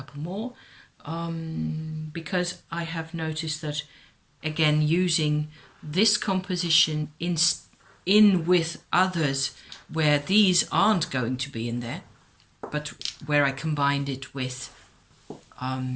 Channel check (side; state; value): both; identical; correlation 1.00